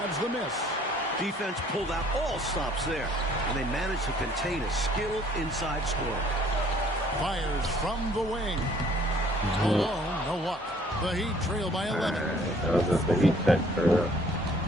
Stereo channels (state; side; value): normal; both; correlation 0.58